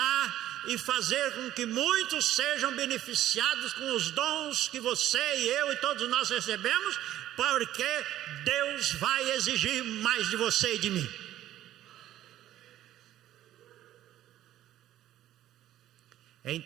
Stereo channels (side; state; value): left; quieter; 13.1 dB